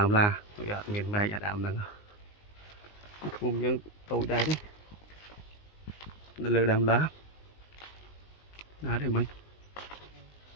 là miền mây đàm nè mông dân tôi đây đấy lơ đàm lá đó để mình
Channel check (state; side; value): late; right; 19 ms